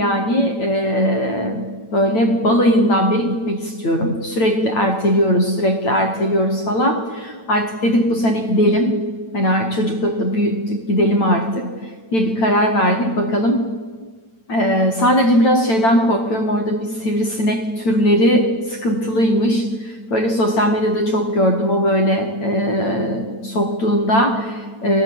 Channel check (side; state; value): right; late; 9.0 ms